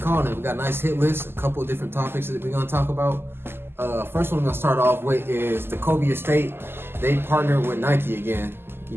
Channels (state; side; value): late; left; 0.11 ms